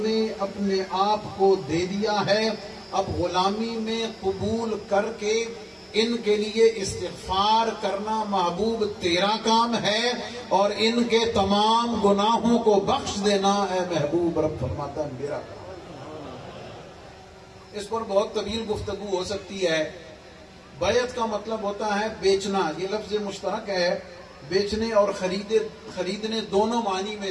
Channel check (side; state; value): both; identical; correlation 1.00